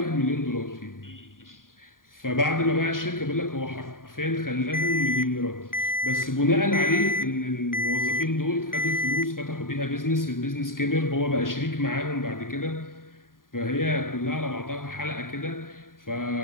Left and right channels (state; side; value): late; right; 0.90 ms